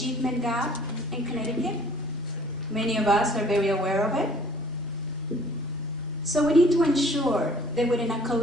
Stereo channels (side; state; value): both; normal; correlation 0.54